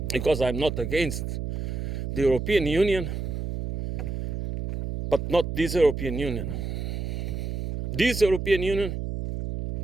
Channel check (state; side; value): noise; right; hum, 4 dB below the sound